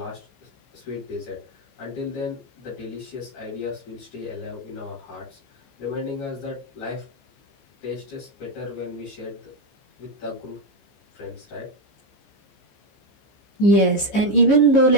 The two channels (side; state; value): right; late; 15 ms